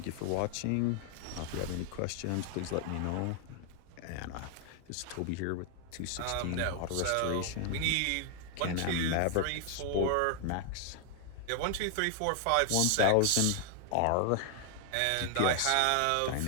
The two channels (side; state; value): both; different; correlation 0.00